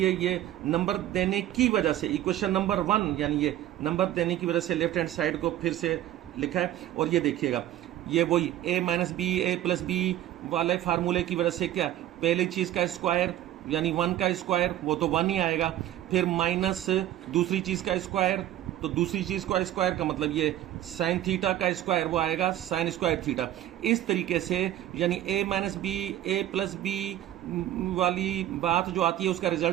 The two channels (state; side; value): quieter; left; 13.0 dB